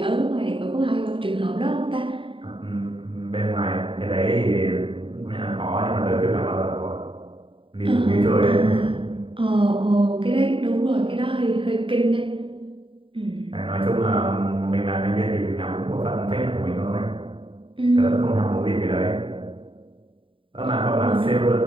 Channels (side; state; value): left; late; 0.25 ms